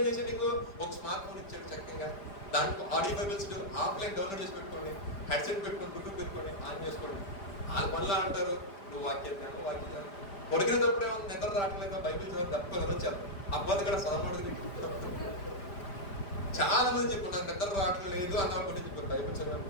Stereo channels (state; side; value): late; right; 5.1 ms